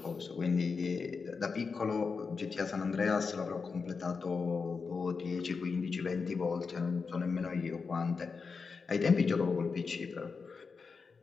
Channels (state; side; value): quieter; right; 5.0 dB